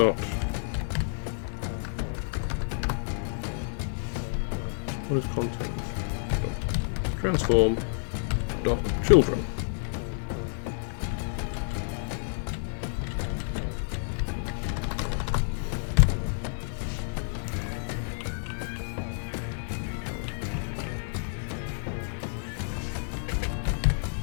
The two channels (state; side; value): silent; right; digital silence